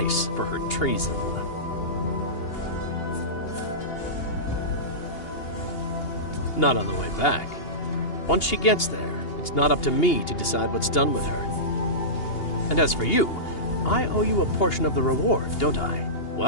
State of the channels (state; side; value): late; right; 2.8 ms